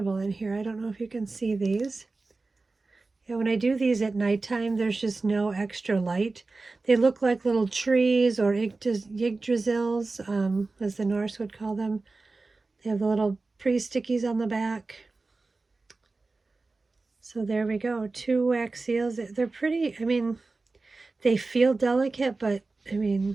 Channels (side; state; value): left; quieter; 3.6 dB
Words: in here. I don't know if you can see these. Yeah, when I do these at nighttime, there's just no extra light. They look like little trees or Yggdrasils, as the Norse would call them. They have the little pre-stickies on the back. So there we go, 2 wax seals. They're pretty, I mean, they feel delicate, but I